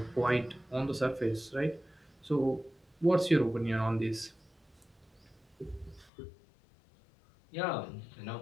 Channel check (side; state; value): right; drops out; at 6.1 s